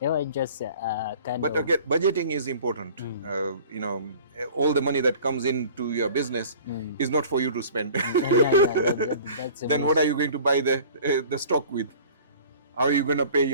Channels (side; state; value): both; inverted; correlation -0.46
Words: were just But again, budgeting is important. All the money that comes into your business is not for you to spend. Then what are you going to buy the stock with? How are you going to pay